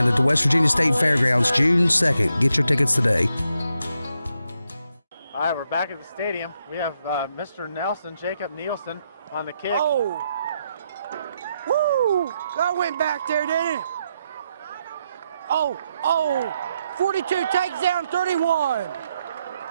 at the West Virginia State Fairgrounds, June 2nd. Get your tickets today. All right, we're back at the stadium. We have Mr. Nelson, Jacob Nielsen, on the kick. Oh. Woo! That went back there, didn't it? Oh. 42 takes down 31.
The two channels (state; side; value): inverted; both; correlation -0.82